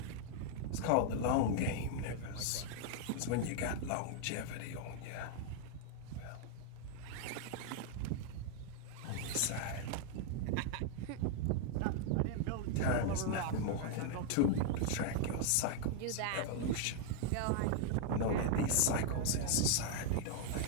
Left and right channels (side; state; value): both; different; correlation 0.00